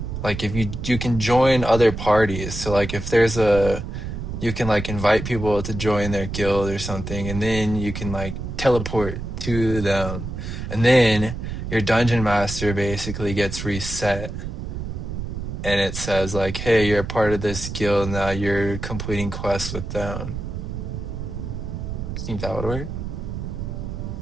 like if you can join other parties. So like if there's you can like invite people to join their guild or something, and then you can like teleport to them, and then your dungeon master basically gets reset, and it says like, hey, you're a part of this guild now, you're completing quests with them. I think that would work.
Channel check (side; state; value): right; noise; rumble, 6 dB below the sound